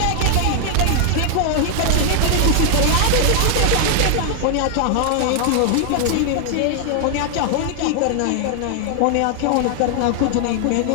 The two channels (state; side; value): different; both; correlation 0.00